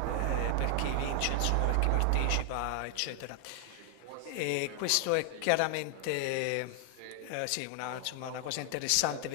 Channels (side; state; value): both; different; correlation 0.00